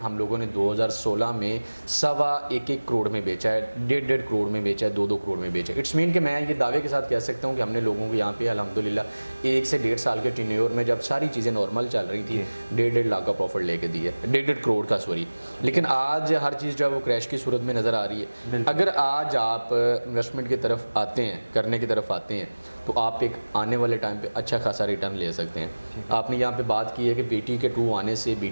हम लोगों ने 2016 में 1.25 करोड़ में बेचा है, 1.5 करोड़ में बेचा है, 2 करोड़ में बेचा है। इट्स मीन कि मैं ये दावे के साथ कह सकता हूँ कि हमने लोगों को यहाँ पे अल्हम्दुलिल्लाह 1 से 1.5 साल के टेन्योर में, जब सारी चीज़ें नॉर्मल चल रही थी, 1.5 लाख का प्रॉफिट लेके दिया, 1.5 करोड़ का, सॉरी। लेकिन आज हर चीज़ जो है वो क्रैश की सूरत में नज़र आ रही है। अगर आज आप इन्वेस्टमेंट की तरफ आते हैं, करने की तरफ आते हैं, तो आप एक आने वाले टाइम पे अच्छा खासा रिटर्न ले सकते हैं। आपने यहाँ पे बात की है कि BTK-2 आने से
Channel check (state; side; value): inverted; both; correlation -1.00